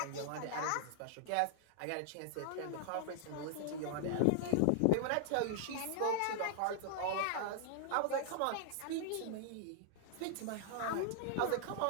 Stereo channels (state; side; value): different; both; correlation -0.01